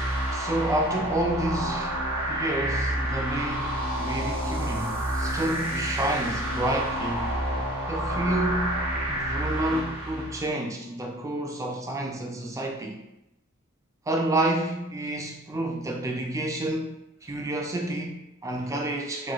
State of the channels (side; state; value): both; normal; correlation 0.48